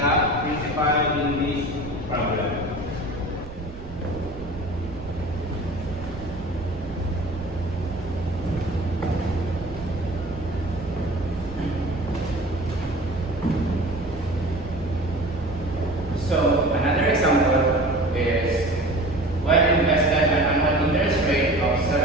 principal in this problem. So another example is when invested at an annual interest rate of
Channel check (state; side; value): noise; right; rumble, 14 dB below the sound